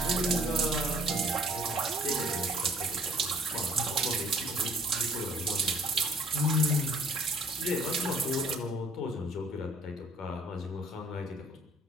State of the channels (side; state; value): both; normal; correlation 0.59